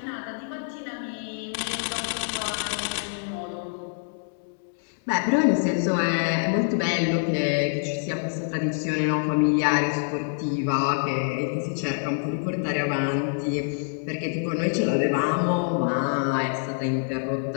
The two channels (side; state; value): right; silent; digital silence